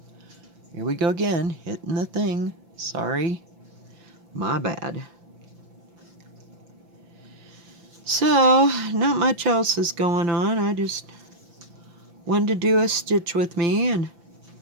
Here we go again, hitting the thing. Sorry. My bad. So, not much else is going on. I just wanted to do a stitch with me and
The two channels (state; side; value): late; left; 5.8 ms